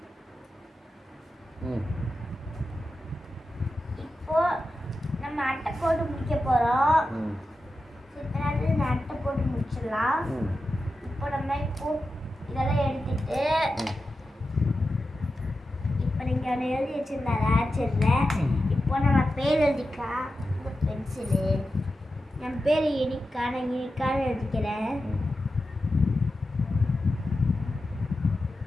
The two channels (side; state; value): both; normal; correlation 0.91